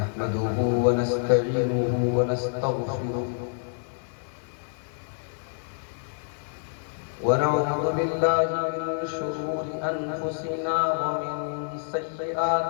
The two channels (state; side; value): silent; right; 60 dB below the other